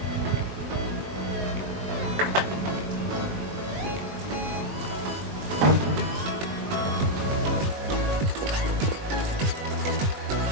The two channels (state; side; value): late; left; 21 ms